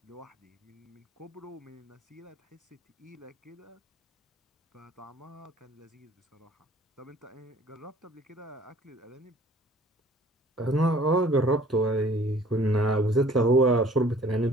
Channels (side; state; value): both; normal; correlation 0.54